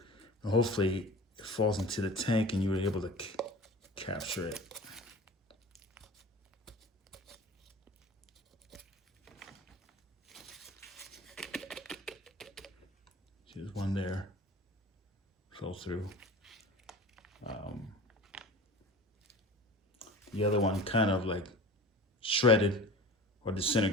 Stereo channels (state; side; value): normal; both; correlation 0.38